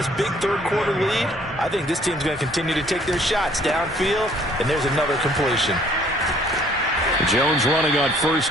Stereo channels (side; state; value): both; normal; correlation 0.60